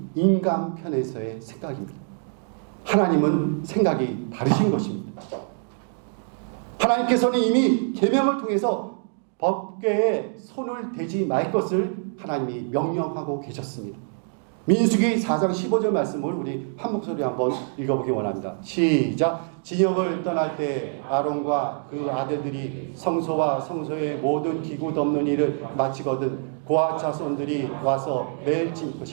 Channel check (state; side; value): silent; left; 62 dB below the other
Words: 인간 편에서의 생각입니다. 하나님은 생각이 다르신 것입니다. 하나님께서는 이미 계명을 통해서 법궤에 손을 대지 말 것을 하나님이 명령하고 계셨습니다. 민수기 4장 15절 말씀을 우리 한 목소리 한번 읽어보기 원합니다. 시작. 진영을 떠날 때 아론과 그 아들들이 성소와 성소의 모든 기구 덮는 일을 마치거든 고아 자손들이 와서 매일 칠